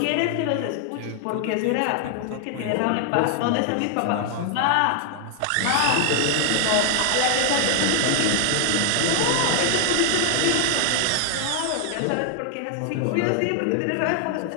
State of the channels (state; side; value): different; both; correlation 0.00